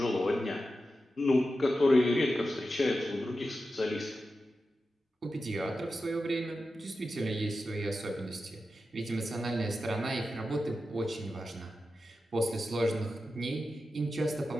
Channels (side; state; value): both; normal; correlation 0.91